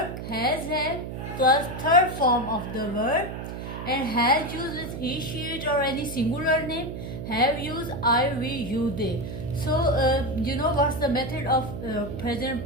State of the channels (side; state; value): right; noise; hum, 7 dB below the sound